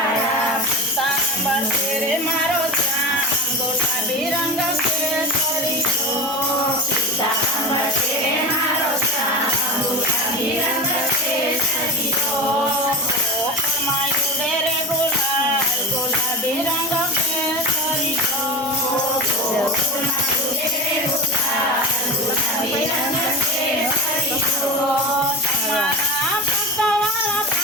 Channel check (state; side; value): normal; both; correlation 0.27